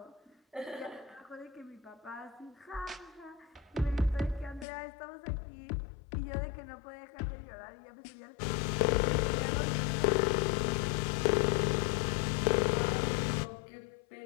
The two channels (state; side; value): drops out; right; at 4.7 s